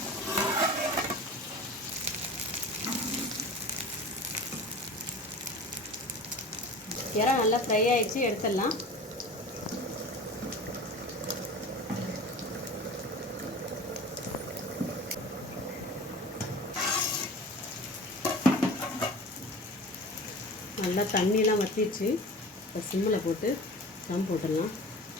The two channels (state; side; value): normal; both; correlation 0.37